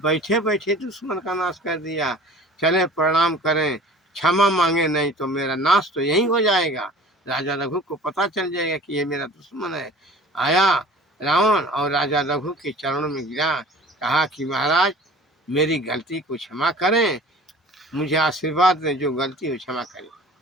बैठे दुश्मन का नाश कर दिया। चले प्रणाम करें, क्षमा मांगे, नहीं तो मेरा नाश तो यहीं हो जाएगा। राजा रघु को पता चल जाएगा कि ये मेरा दुश्मन है। आया रावण और राजा रघु के चरणों में गिरा, कहा कि महाराज मेरी गलती को क्षमा करें, मुझे आशीर्वाद दें, जो गलती हो क्षमा करें।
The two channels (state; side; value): normal; both; correlation 0.44